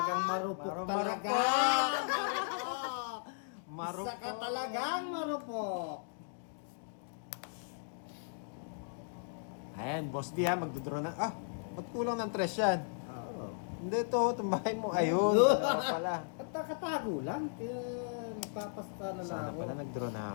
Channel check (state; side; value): silent; right; digital silence